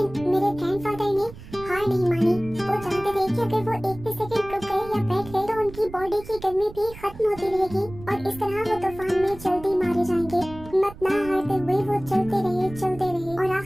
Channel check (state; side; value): noise; right; rumble, 16 dB below the sound